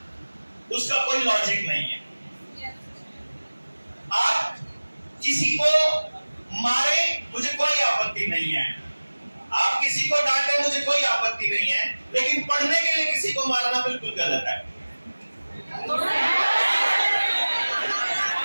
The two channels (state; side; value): inverted; both; correlation -1.00